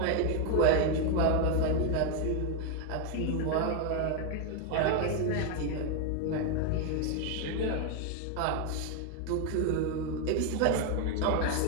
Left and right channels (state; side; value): different; both; correlation 0.01